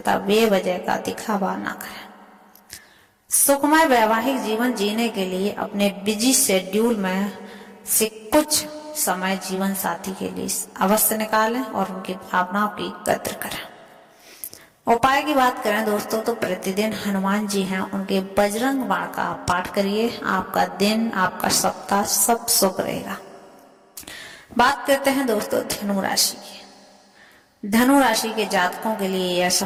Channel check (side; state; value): both; identical; correlation 1.00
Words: बेवजह का दिखावा न करें। सुखमय वैवाहिक जीवन जीने के लिए अपने बिजी शेड्यूल में से कुछ समय जीवन साथी के लिए अवश्य निकालें और उनकी भावनाओं की कद्र करें। उपाय की बात करें दोस्तों तो प्रतिदिन हनुमान जी हैं, उनके बजरंग बाण का पाठ करिए, आपका दिन आपका सप्ताह सब शुभ रहेगा। बात करते हैं दोस्तों धनु राशि की। धनु राशि के जातकों के लिए यह